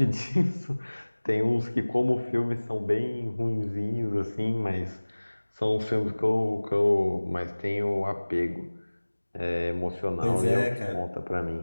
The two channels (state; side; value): inverted; both; correlation -1.00